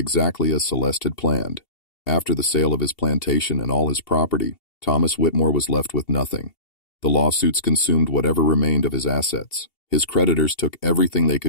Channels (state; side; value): late; right; 2.7 ms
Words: as Celeste had planned. After the sale of his plantation and all his property, Thomas Whitmore was left with nothing. The lawsuits consumed whatever remained of his assets. His creditors took everything they